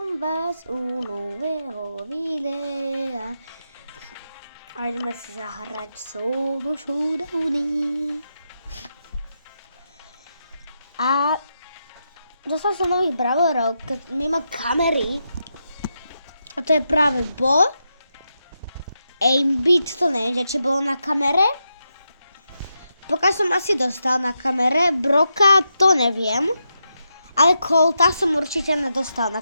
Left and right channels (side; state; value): both; inverted; correlation -0.85